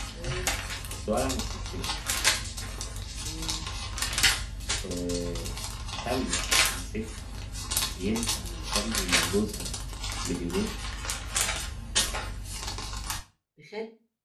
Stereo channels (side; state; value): both; identical; correlation 1.00